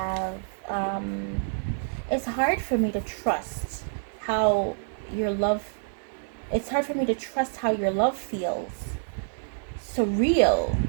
it's hard for me to trust how your love, it's hard for me to trust how your love feels. Surreal.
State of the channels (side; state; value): left; silent; digital silence